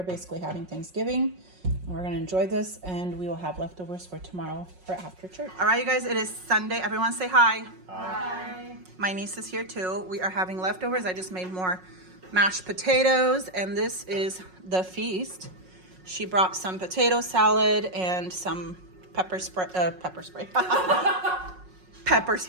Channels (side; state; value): left; late; 5.5 ms